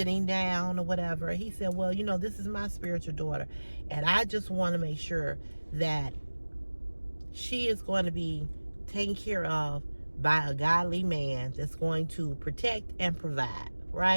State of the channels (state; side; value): inverted; both; correlation -1.00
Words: down or whatever. He said, well, this is my spiritual daughter, and I just want to make sure that she is going to be taken care of by a godly man that's going to protect and provide,